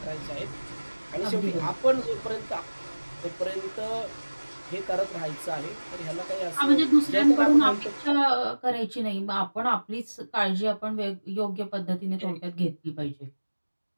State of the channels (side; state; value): both; inverted; correlation -1.00